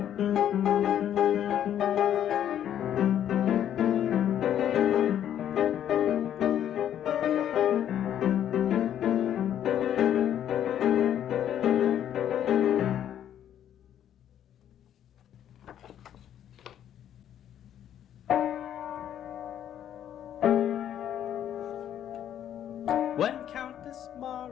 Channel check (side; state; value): right; quieter; 10.4 dB